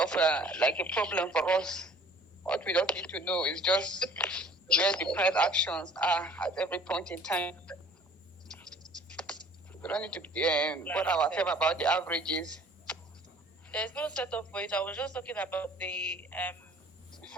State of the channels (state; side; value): normal; both; correlation 0.52